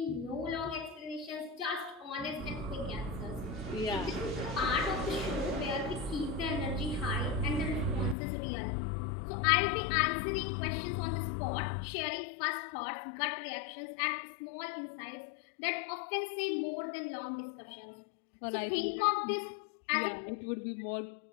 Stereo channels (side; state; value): right; drops out; at 8.2 s